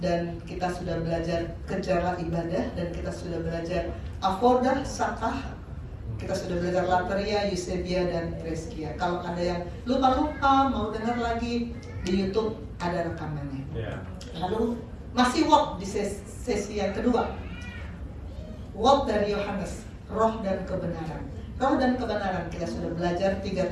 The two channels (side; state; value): both; identical; correlation 1.00